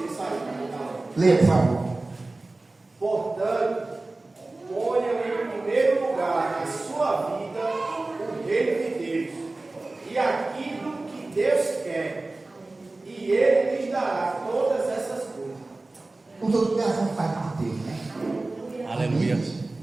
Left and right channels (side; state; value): left; quieter; 3.1 dB